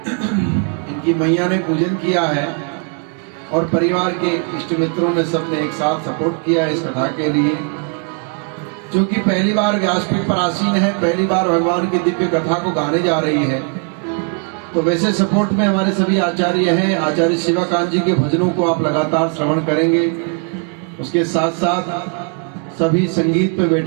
इनकी मैया ने पूजन किया है और परिवार के इष्ट मित्रों ने सबने एक साथ सपोर्ट किया इस कथा के लिए। क्योंकि पहली बार व्यासपीठ पर आसीन है, पहली बार भगवान की दिव्य कथा को गाने जा रही है, तो वैसे सपोर्ट में हमारे सभी आचार्य हैं। आचार्य शिवाकांत जी के भजनों को आप लगातार श्रवण करेंगे। उसके साथ साथ सभी संगीत पे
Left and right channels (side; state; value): left; quieter; 38.7 dB